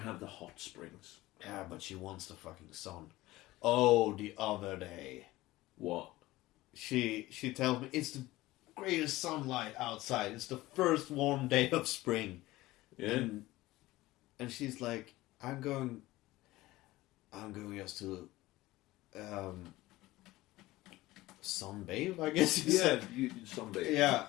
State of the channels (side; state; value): right; quieter; 18.1 dB